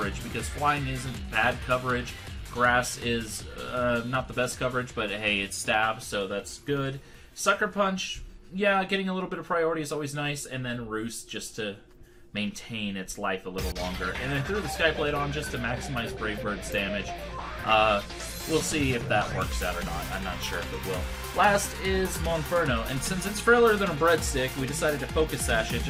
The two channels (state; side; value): identical; both; correlation 1.00